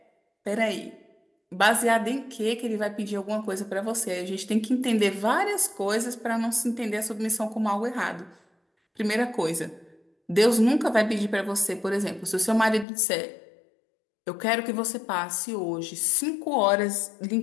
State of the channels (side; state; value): right; drops out; at 12.9 s